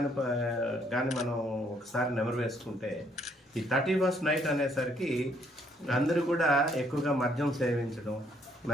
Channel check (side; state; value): both; normal; correlation 0.68